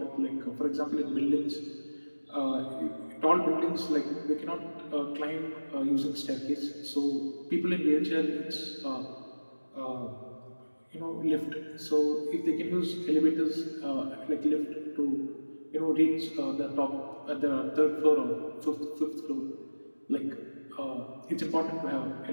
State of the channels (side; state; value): both; inverted; correlation -1.00